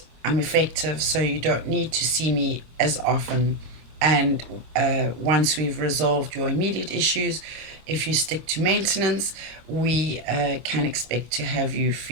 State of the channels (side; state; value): left; late; 25 ms